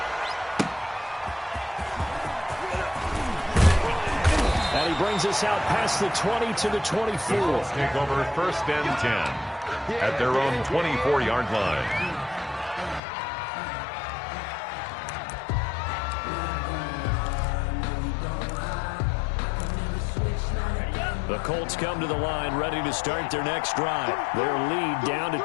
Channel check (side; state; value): right; drops out; at 13.0 s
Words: And he brings us out past the 20 to the 24. Take over 1st and 10 at their own 24-yard line. The Colts come to the line ready to start their next drive. Their lead down to